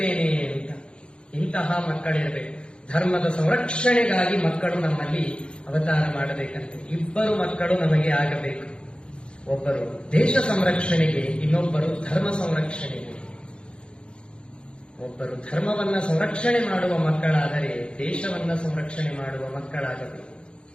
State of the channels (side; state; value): right; late; 0.055 ms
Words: ಅಂತ. ಇಂತಹ ಮಕ್ಕಳಿರಬೇಕು. ಧರ್ಮದ ಸಂರಕ್ಷಣೆಗಾಗಿ ಮಕ್ಕಳು ನಮ್ಮಲ್ಲಿ ಅವತಾರ ಮಾಡಬೇಕಂತೆ. ಇಬ್ಬರು ಮಕ್ಕಳು ನಮಗೆ ಆಗಬೇಕು. ಒಬ್ಬರು ದೇಶ ಸಂರಕ್ಷಣೆಗೆ, ಇನ್ನೊಬ್ಬರು ಧರ್ಮ ಸಂರಕ್ಷಣೆಗೆ. ಒಬ್ಬರು ಧರ್ಮವನ್ನ ಸಂರಕ್ಷಣೆ ಮಾಡುವ ಮಕ್ಕಳಾದರೆ ದೇಶವನ್ನ ಸಂರಕ್ಷಣೆ ಮಾಡುವ ಮಕ್ಕಳಾಗಬೇಕು.